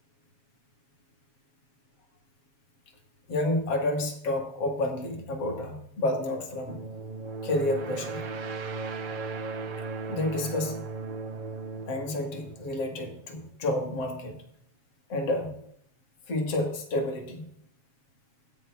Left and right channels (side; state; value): right; late; 7.3 ms